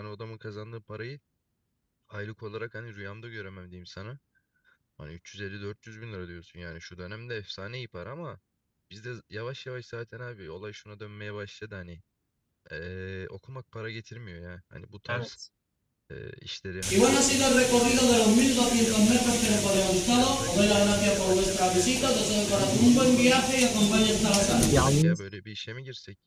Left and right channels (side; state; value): both; identical; correlation 1.00